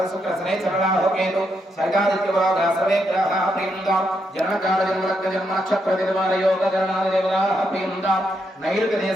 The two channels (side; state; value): both; normal; correlation 0.80